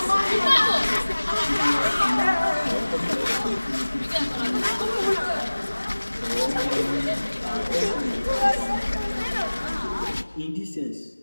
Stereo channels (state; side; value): inverted; both; correlation -1.00